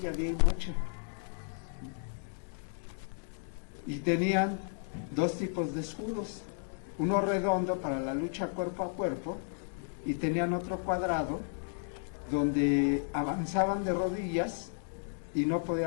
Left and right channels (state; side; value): silent; right; digital silence